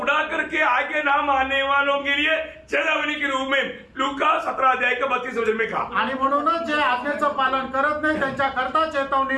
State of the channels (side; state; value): both; identical; correlation 1.00